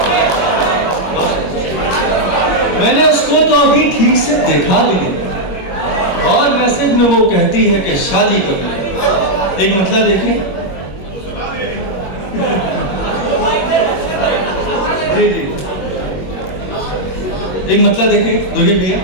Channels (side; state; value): right; late; 21 ms